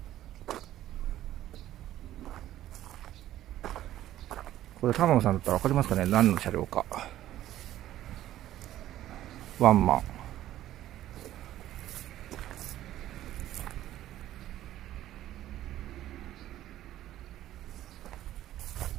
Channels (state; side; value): quieter; left; 13.3 dB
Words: これ玉野さんだったら分かりますかね、何の車両か。ワンマン。